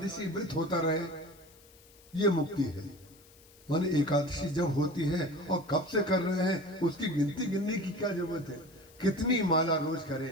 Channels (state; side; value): noise; left; hiss, 26 dB below the sound